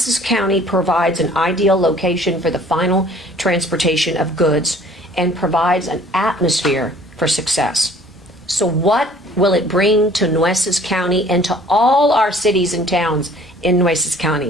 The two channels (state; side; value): normal; both; correlation 0.53